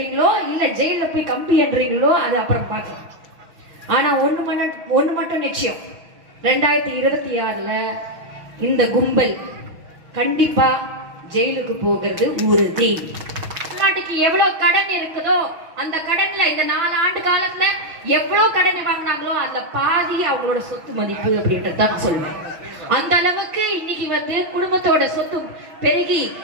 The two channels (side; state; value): left; late; 6.1 ms